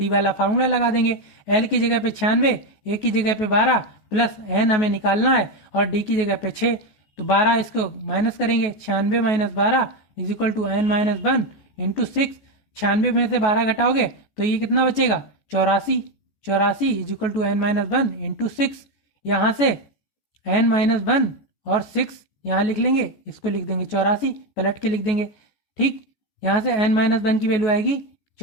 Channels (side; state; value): right; late; 14 ms